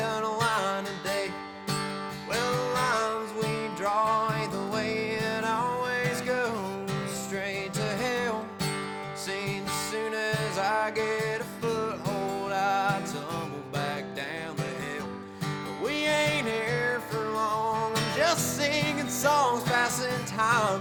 a line today. Well, the lines we draw ain't the way it always goes, straight to hell. Seems as soon as I get a foothold, I tumble back down the hill. But we ain't here for long, I'm just singing songs, passing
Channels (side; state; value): both; identical; correlation 1.00